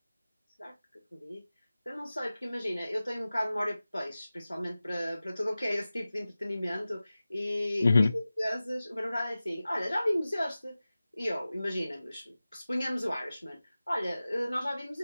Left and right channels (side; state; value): both; inverted; correlation -0.96